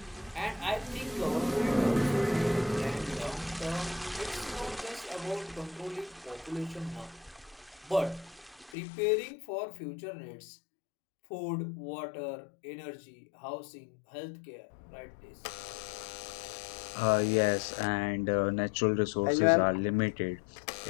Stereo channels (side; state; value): right; drops out; at 8.8 s